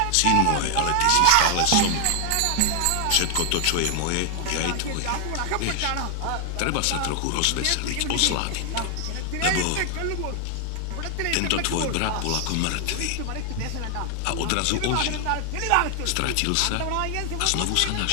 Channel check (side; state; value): both; different; correlation 0.00